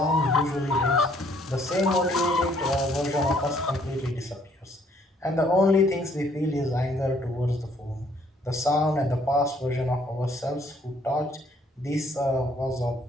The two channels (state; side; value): normal; both; correlation 0.64